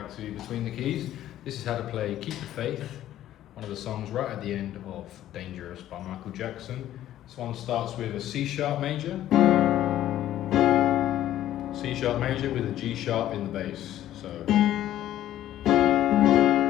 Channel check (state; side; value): quieter; right; 12.7 dB